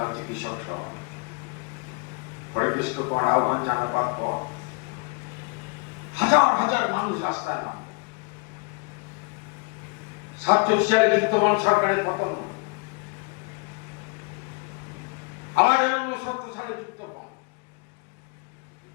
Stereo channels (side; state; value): right; quieter; 31.2 dB